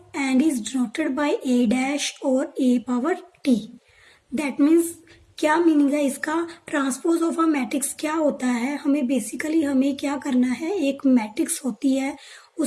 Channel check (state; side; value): identical; both; correlation 1.00